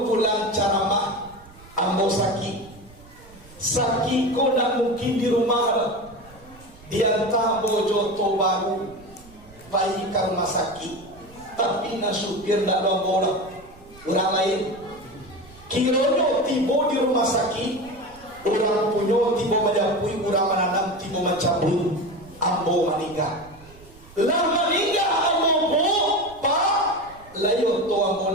pulang caramah, ambo sakit. Sakit ko nak mungkin di rumah. Dia tak bojo oto baru, pai ke rumah sakit. Tapi na supir nak dong bola. Orang lain. Kironyo tiba di rumah sakit. Orang punyo tiba majapui, orang menanam tiba macabui. Ambo meninggal. Lah meninggal ambo po, Pak. Layo to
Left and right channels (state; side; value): noise; right; rumble, 23 dB below the sound